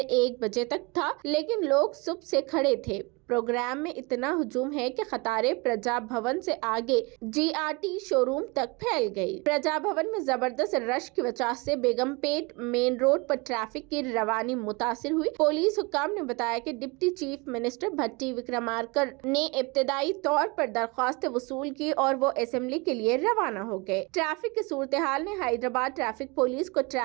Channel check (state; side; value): quieter; left; 27.6 dB